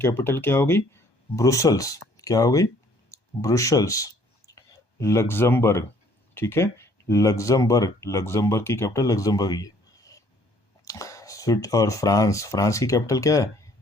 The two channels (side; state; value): right; late; 1.2 ms